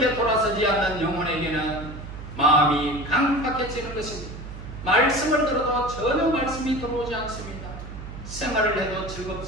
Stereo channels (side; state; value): right; noise; hum, 11 dB below the sound